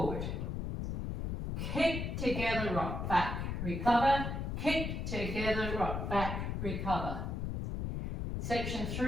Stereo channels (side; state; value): left; noise; rumble, 3 dB below the sound